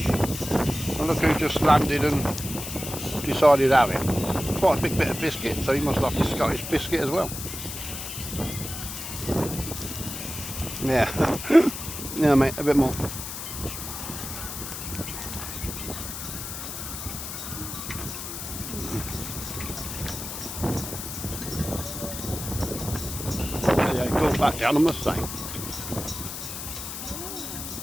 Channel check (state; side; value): noise; left; hiss, 7 dB below the sound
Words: And look who just landed and decided to have it. Quite a big bit of biscuit, so he must like his Scottish biscuit as well. Yeah, yeah, mate, a bit more. Yeah, go back down, I must say.